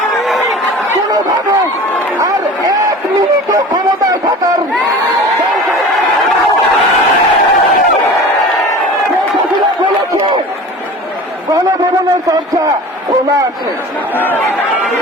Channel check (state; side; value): normal; both; correlation 0.38